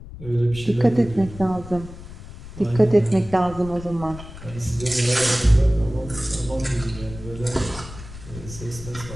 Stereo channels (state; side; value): noise; left; rumble, 14 dB below the sound